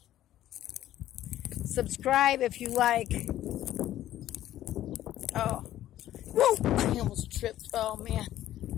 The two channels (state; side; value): quieter; right; 13.1 dB